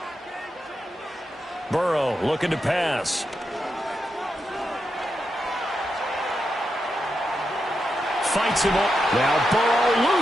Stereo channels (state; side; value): normal; both; correlation 0.86